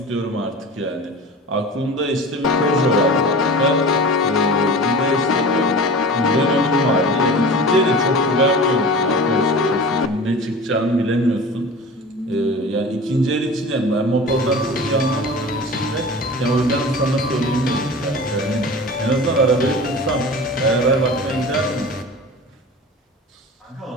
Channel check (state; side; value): normal; both; correlation 0.35